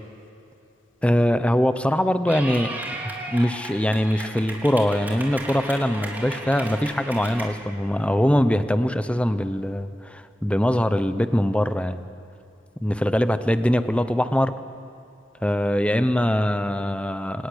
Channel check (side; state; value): both; normal; correlation 0.94